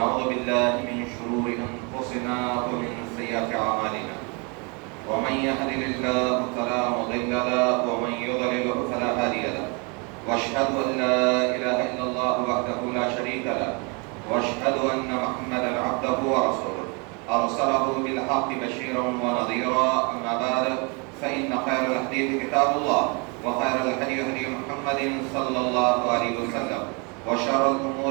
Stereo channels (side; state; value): left; quieter; 32.3 dB